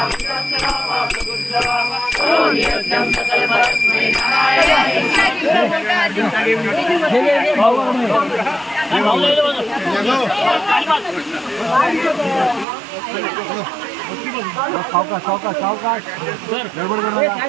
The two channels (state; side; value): drops out; left; at 12.7 s